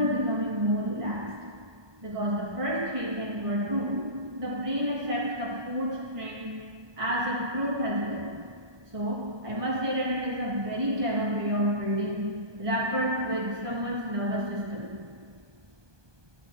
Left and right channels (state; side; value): late; left; 1.2 ms